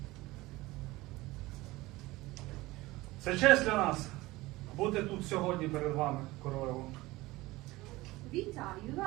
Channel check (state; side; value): quieter; left; 19.8 dB